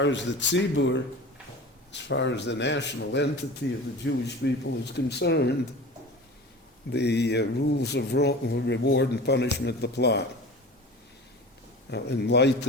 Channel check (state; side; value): normal; both; correlation 0.36